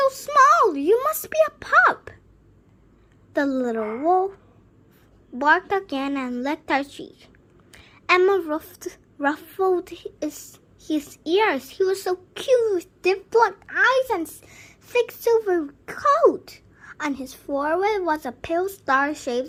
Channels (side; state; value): both; identical; correlation 1.00